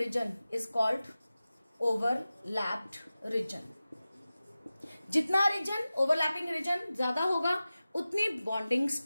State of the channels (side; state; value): both; inverted; correlation -0.96